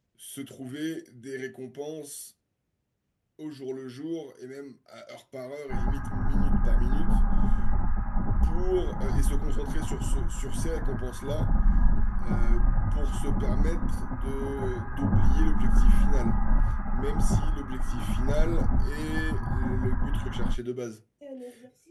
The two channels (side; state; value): both; identical; correlation 1.00